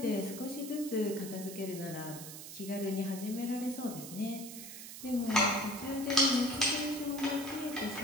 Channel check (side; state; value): right; noise; hiss, 11 dB below the sound